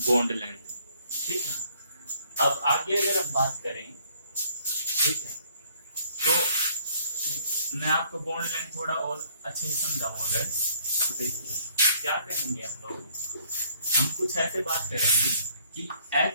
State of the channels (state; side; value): inverted; both; correlation -0.62